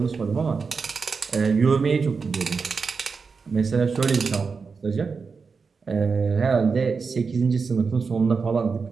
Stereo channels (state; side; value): quieter; left; 5.0 dB